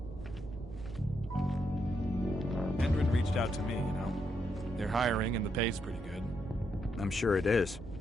Endrin reached out to me, you know. They're hiring and the pay's pretty good. I'm sure it is.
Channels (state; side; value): normal; both; correlation 0.79